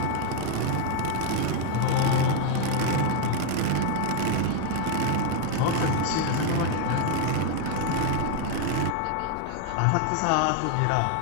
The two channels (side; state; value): both; different; correlation 0.01